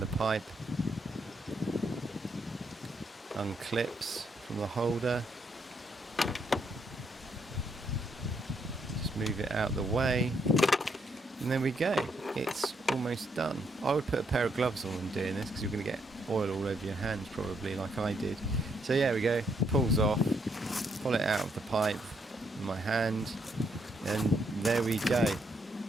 the pipe. Unclips from the holder. Just move it out the way. And there we go. It's almost done. I would put a pair of gloves on when doing this because you're going to get oil all over your hands probably, like I did. So yeah, we go. Pulls off. Pull it out of the pipe in my hand. And there we go.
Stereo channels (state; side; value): normal; both; correlation 0.75